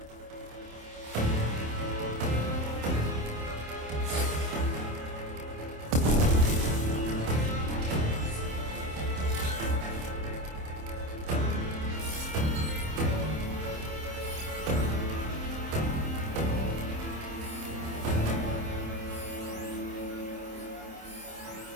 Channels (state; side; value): late; left; 27 ms